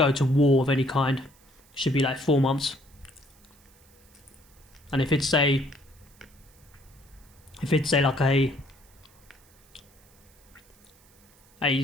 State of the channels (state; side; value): noise; right; hiss, 29 dB below the sound